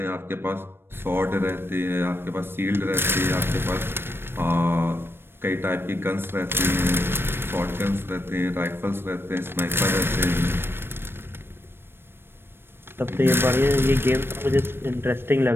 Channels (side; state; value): left; late; 0.11 ms